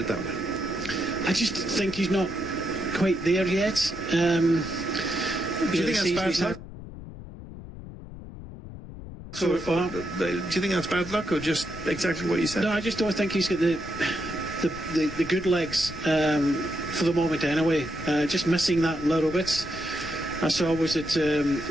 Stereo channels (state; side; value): noise; left; rumble, 13 dB below the sound